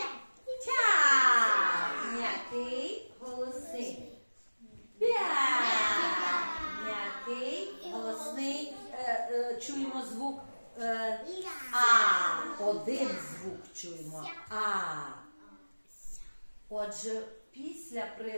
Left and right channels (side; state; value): both; inverted; correlation -1.00